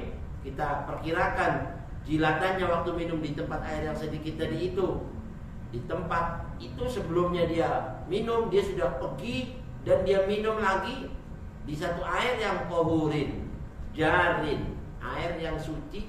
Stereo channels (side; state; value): both; identical; correlation 1.00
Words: kita perkirakan jilatannya waktu minum di tempat air yang sedikit tadi itu, di tempat itu sebelumnya dia minum, dia sudah pergi dan dia minum lagi di satu air yang tahurin, jarin, air yang